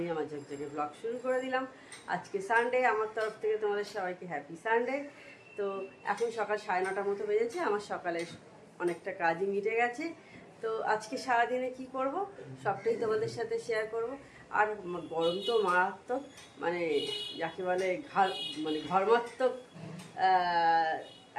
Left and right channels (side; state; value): both; identical; correlation 1.00